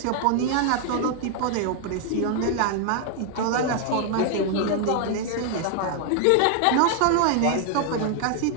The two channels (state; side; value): different; both; correlation 0.00